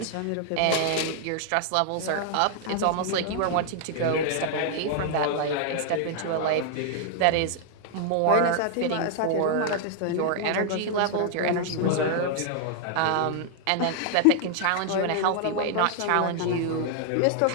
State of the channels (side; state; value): both; different; correlation 0.00